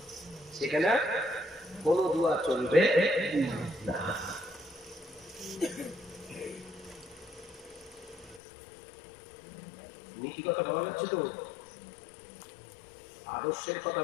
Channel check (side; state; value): right; drops out; at 8.4 s